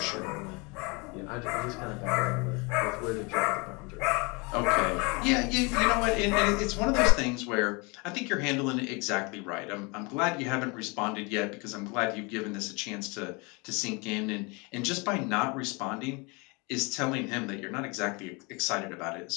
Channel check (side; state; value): right; quieter; 29.1 dB